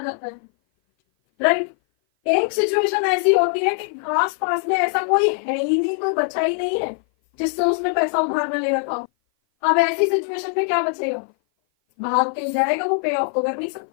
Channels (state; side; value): silent; right; 57 dB below the other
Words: जाता है, राइट। एक सिचुएशन ऐसी होती है कि आस पास में ऐसा कोई है ही नहीं, कोई बचा ही नहीं है जिससे उसने पैसा उधार में ले रखा हो। अब ऐसी सिचुएशन में क्या बचेगा, भाग के जाएगा, वो पे ऑफ तो कर नहीं